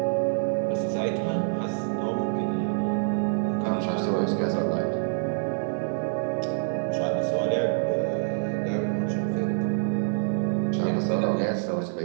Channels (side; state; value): left; silent; digital silence